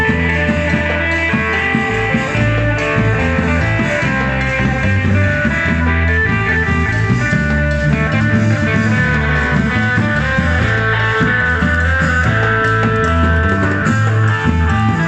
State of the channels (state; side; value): identical; both; correlation 1.00